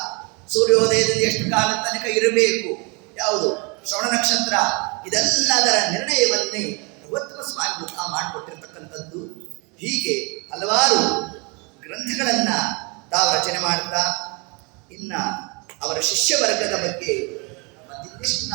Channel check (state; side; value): quieter; left; 30.3 dB